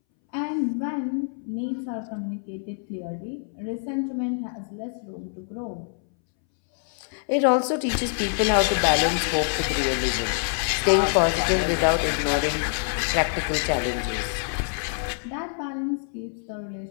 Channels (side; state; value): right; silent; 61 dB below the other